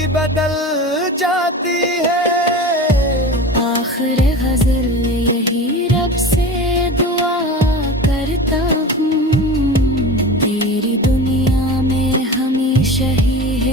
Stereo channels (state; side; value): normal; both; correlation 0.32